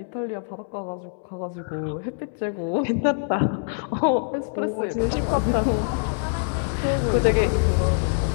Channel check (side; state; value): right; silent; digital silence